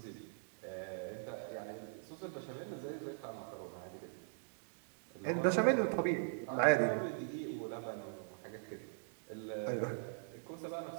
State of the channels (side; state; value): left; silent; digital silence